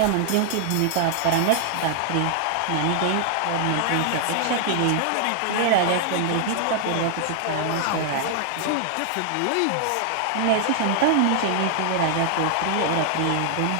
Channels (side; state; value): both; different; correlation 0.00